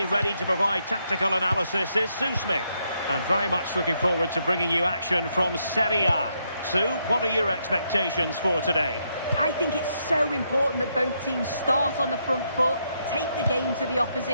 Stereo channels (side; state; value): both; inverted; correlation -0.77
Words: ready to provide tactical analysis is Sue Smith. And very much looking forward to bringing you action from Serie A. Sue, what are your expectations for today? I think it's so important that both teams start on the front foot, take the game to the